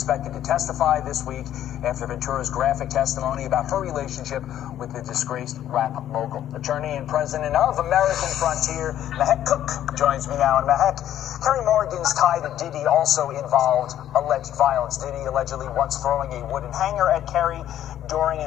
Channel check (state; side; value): quieter; right; 11.5 dB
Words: to testify this week after Ventura's graphic testimony about her relationship with the disgraced rap mogul. Attorney and president of American Frontier, Meek Cook, joins me now. And Meek, Carrie Morgan's tie to Diddy also involved alleged violence. Diddy allegedly once throwing a wooden hanger at Carrie during